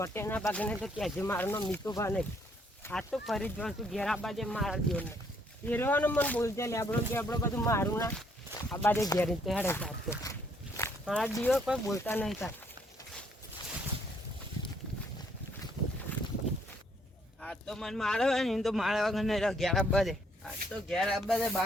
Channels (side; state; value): both; normal; correlation 0.68